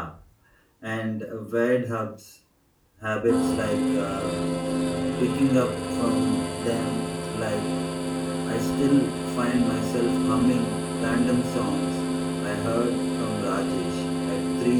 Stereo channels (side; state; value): both; identical; correlation 1.00